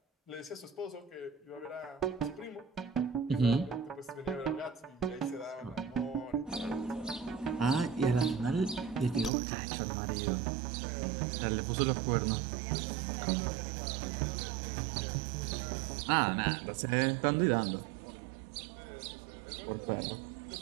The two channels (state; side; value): drops out; left; at 9.3 s